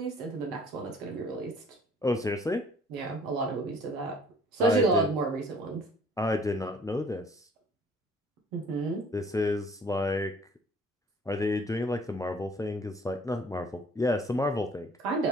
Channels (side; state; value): both; normal; correlation 0.54